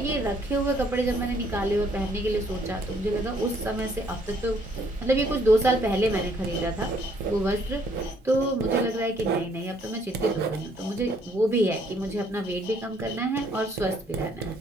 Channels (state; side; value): normal; both; correlation 0.66